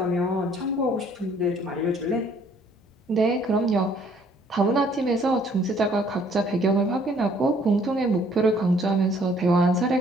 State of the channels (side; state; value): both; normal; correlation 0.61